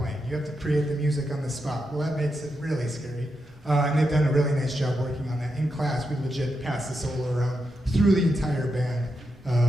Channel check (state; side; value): normal; both; correlation 0.85